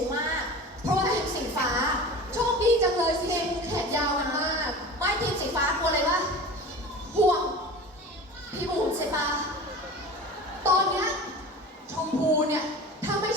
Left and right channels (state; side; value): normal; both; correlation 0.35